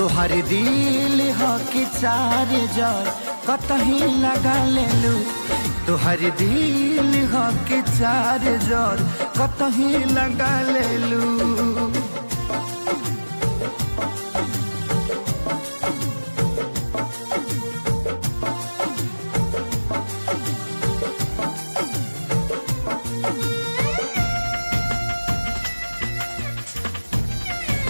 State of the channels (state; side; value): inverted; both; correlation -1.00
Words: दिल हो कि चार जार कतही लगा लेलू। तोहर दिल हो कि चार जार कतही लगा लेलू।